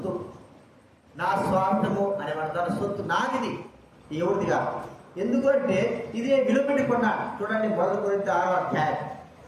నా స్వార్థము అనేవాడు. తన సొత్తు నాదిది, ఎవరిదిగా. ఎందుకంటే ఇదే విలువ పెట్టి కొన్నాడు. చూడండి, 1 కొరింథీ 6వ అధ్యాయం,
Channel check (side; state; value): both; identical; correlation 1.00